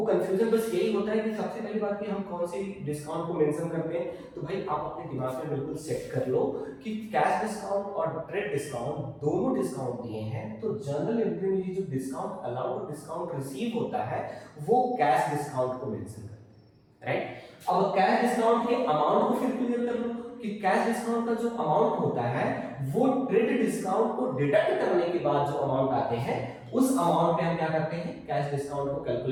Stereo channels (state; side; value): identical; both; correlation 1.00